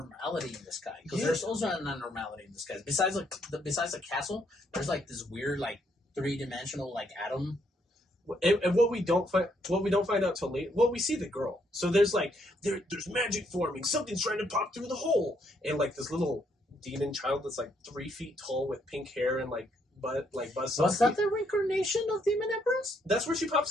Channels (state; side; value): normal; both; correlation 0.73